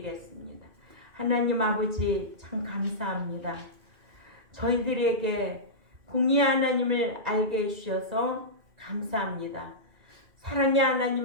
하나님 아버지 참 감사합니다. 저희들에게 공의 하나님을 알게 해주셔서 감사합니다. 사랑의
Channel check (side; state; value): left; late; 2.3 ms